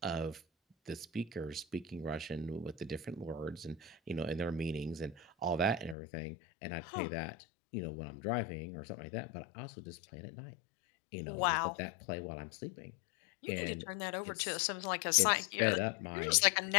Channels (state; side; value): drops out; right; at 6.0 s